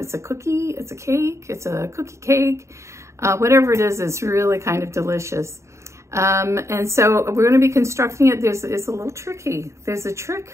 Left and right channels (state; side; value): late; left; 0.14 ms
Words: a cookie, it's a cake, it's a cookie cake, whatever it is, it's really kind of delicious. And so we're going to be constructing it. It's a little tricky. There's a trick